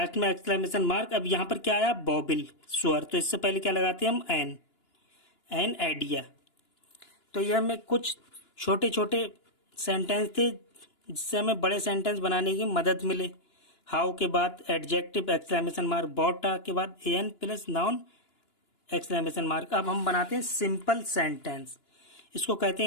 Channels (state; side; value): late; right; 2.9 ms